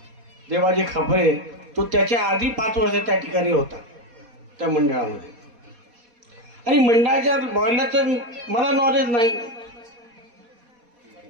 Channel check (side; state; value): left; late; 4.2 ms